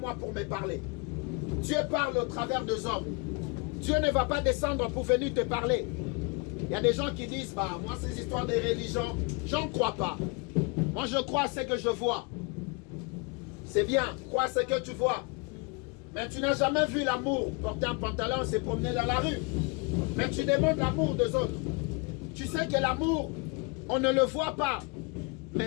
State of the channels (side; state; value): right; quieter; 30.4 dB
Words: pour me parler. Dieu parle au travers des hommes. Dieu ne va pas descendre pour venir te parler. Il y a des gens qui disent, bah, moi ces histoires de religion, j'en crois pas. Moi je crois à ce que je vois. C'est bien, crois à ce que tu vois. Mais tu n'as jamais vu l'amour porter un pantalon et se promener dans la rue. Mais tu demandes l'amour des autres. Tu sais que l'amour, on ne le voit pas.